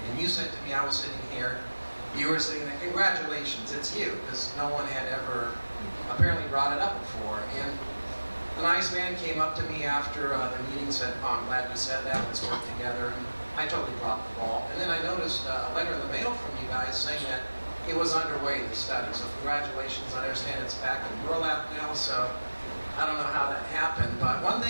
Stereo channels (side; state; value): both; inverted; correlation -1.00